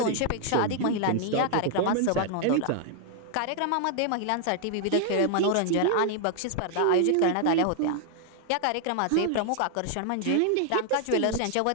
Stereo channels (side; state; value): both; different; correlation 0.00